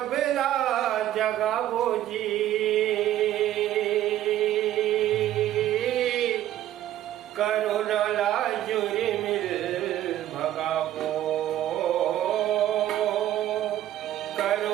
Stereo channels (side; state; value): left; quieter; 12.8 dB